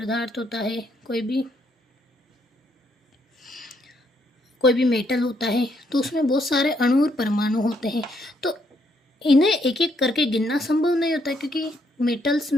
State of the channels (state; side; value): normal; both; correlation 0.73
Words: होता है, कोई भी मेटल होता है, तो उसमें बहुत सारे अणु और परमाणु होते हैं। तो इन्हें एक एक करके गिनना संभव नहीं होता है, क्योंकि मेटल्स